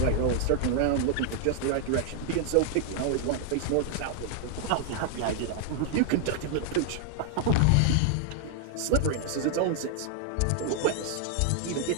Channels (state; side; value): different; both; correlation 0.00